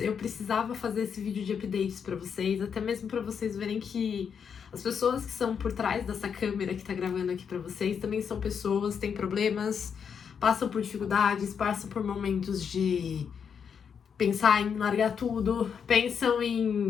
precisava fazer esse vídeo de updates pra vocês, até mesmo pra vocês verem que as pessoas que são por trás dessa câmera que tá gravando aqui pra vocês também são pessoas, têm problemas, passam por dificuldades, passam por momentos de pensar em largar tudo, pensam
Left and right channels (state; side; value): quieter; right; 7.0 dB